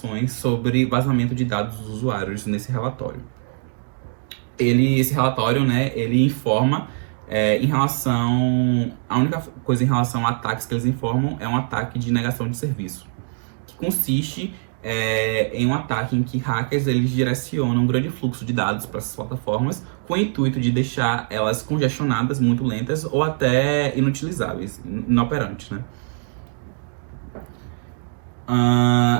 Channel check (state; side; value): silent; left; digital silence